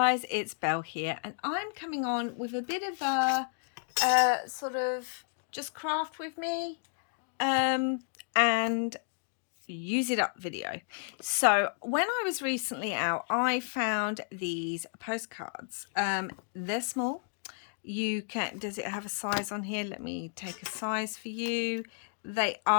it's Belle here, and I'm coming on with a bit of a sort of just craft with me and use it up video. So when I was recently out, I found these postcards. They're small. Does it have a size on here? Let me take a size for you. They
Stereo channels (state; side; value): silent; right; digital silence